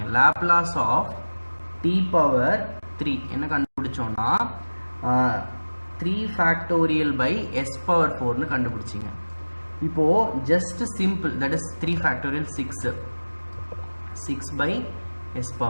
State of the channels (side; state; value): both; inverted; correlation -1.00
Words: லாப்லாஸ் ஆஃப் t⁻3 என்ன கண்டுபிடிச்சோம்னா 3 கண்டுபிடிச்சிங்க. இப்போ just simple, that is 3 6/s⁴.